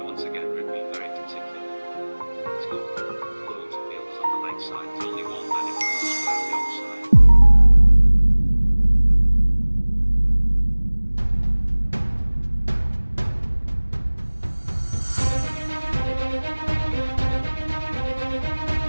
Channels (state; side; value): inverted; both; correlation -1.00